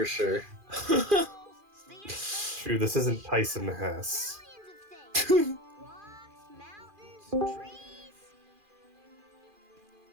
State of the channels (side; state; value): left; late; 2.4 ms